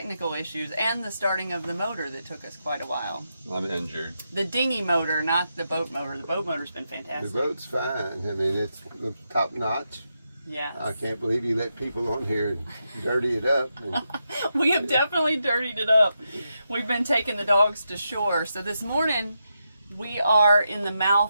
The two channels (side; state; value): both; inverted; correlation -0.85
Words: issues and the starting of the motor that took us quite a while. I'm injured. The dinghy motor, not the boat motor. The boat motor's been fantastic. The boat's fine. I mean, it's top notch. Yes. I can't believe you let people on here dirty it up. We have definitely dirtied it up. We've been taking the dogs to shore. So this morning we are in the